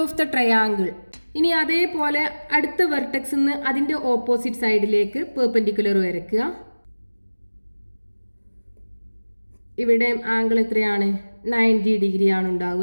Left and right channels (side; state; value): both; inverted; correlation -1.00